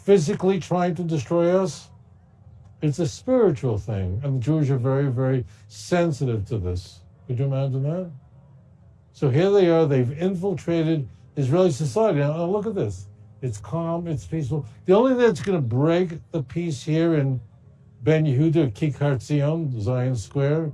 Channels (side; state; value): both; identical; correlation 1.00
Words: trying to destroy us. It's a spiritual thing. And the Jews are very, very sensitive to this. Could you imagine that? So here they are. They've infiltrated Israeli society. Now look at this. It's calm. It's peaceful. The only thing that's going to break the peace here in Ben Yehuda, Kikar Zion, Zion Square,